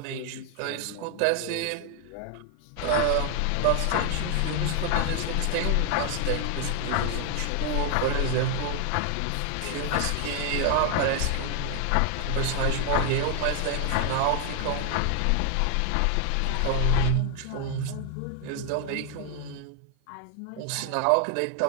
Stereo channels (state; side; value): different; both; correlation 0.00